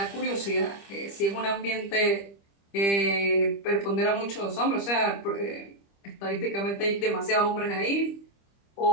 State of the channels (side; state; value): right; late; 25 ms